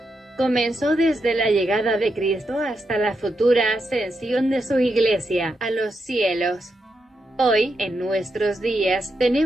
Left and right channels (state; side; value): normal; both; correlation 0.84